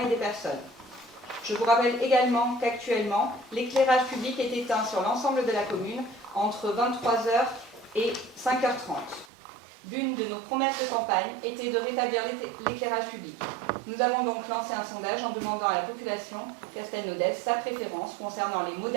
des personnes. Je vous rappelle également qu'actuellement, l'éclairage public est éteint sur l'ensemble de la commune entre 23h et 5h30. L'une de nos promesses de campagne était de rétablir l'éclairage public. Nous avons donc lancé un sondage en demandant à la population castelnaudaise sa préférence concernant les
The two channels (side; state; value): left; drops out; at 9.2 s